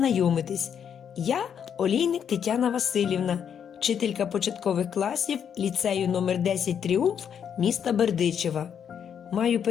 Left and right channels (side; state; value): right; quieter; 8.1 dB